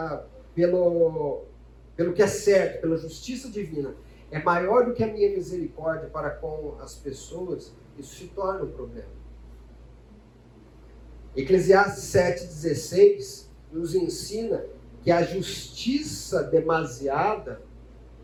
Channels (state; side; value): identical; both; correlation 1.00